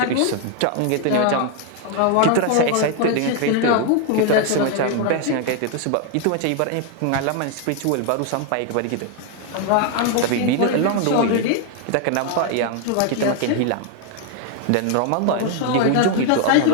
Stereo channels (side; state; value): both; different; correlation 0.01